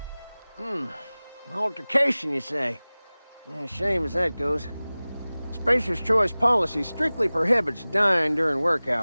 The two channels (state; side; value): inverted; both; correlation -0.99